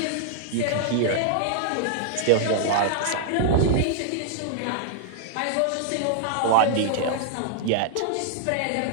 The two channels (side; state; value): both; different; correlation -0.01